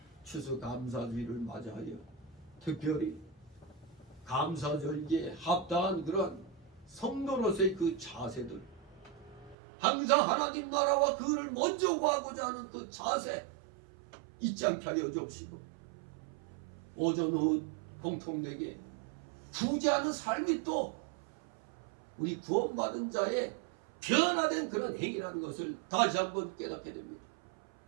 추수감사주의를 맞이하여 특별히 감사절기에 합당한 그러한 성도로서의 그 자세들 항상 하나님 나라와 그를 먼저 구하고자 하는 그 자세 잊지 않게 하여 주옵시고 오전 오후 공통되게 구제하는 삶이 또 우리 구원받은 자의 변화된 그런 행위라는 것을 다시 한번 깨닫게 됩니다.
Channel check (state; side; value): drops out; left; at 9.6 s